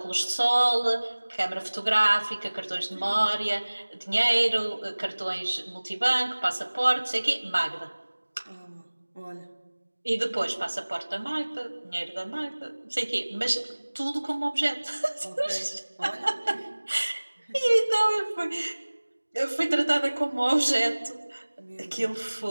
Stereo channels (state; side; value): inverted; both; correlation -1.00